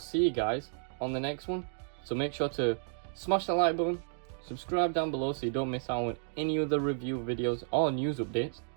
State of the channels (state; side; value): silent; left; digital silence